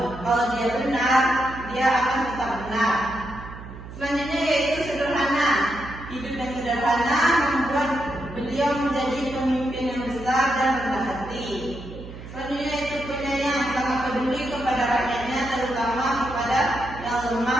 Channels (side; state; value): right; noise; hum, 13 dB below the sound